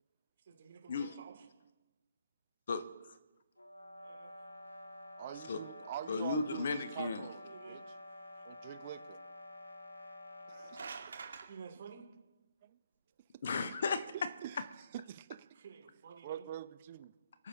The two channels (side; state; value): both; inverted; correlation -0.71